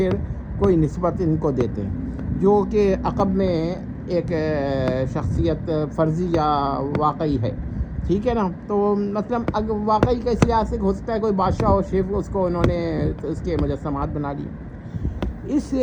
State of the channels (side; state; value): both; identical; correlation 1.00